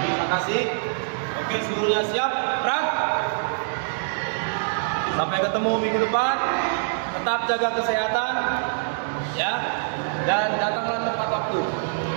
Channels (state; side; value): silent; left; digital silence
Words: kasih. Oke, seluruhnya siap. Gerak. Sampai ketemu minggu depan. Tetap jaga kesehatan, ya. Dan datanglah tepat waktu.